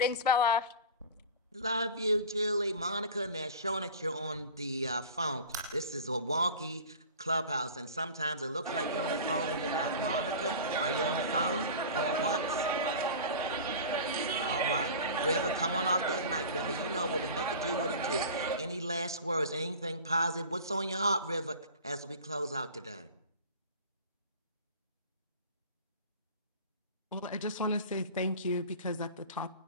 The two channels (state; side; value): inverted; both; correlation -0.36